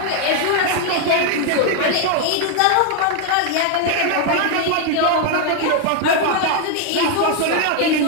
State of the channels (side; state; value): both; different; correlation 0.01